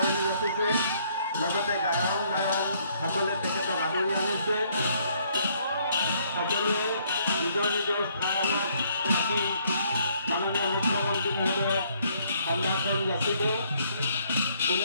যাচিছে লগতে গায়কসকলে তেখেতক আদৰি আনিছে সকলোৱে নিজৰ নিজৰ স্থানত থাকি মাননীয় মুখ্যমন্ত্ৰী মহোদয়ক সম্ভাষণ যাচিব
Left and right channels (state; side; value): inverted; both; correlation -0.66